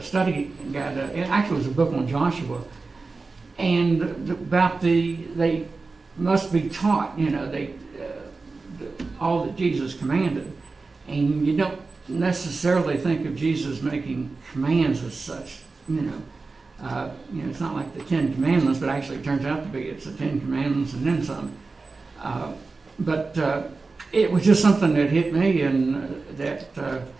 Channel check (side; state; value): left; quieter; 3.9 dB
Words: study guide. It actually was a book on Joshua, and about they must be taught, all that Jesus commanded, and you don't necessarily think of Jesus making commands as such. It's not like the Ten Commandments, but actually it turns out to be it's the Ten Commandments and then some. But it was just something that hit me, and that